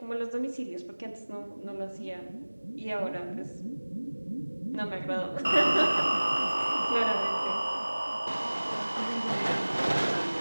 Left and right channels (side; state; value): both; inverted; correlation -1.00